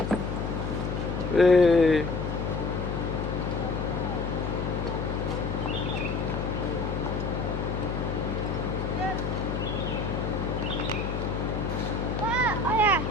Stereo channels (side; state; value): left; noise; hum, 2 dB below the sound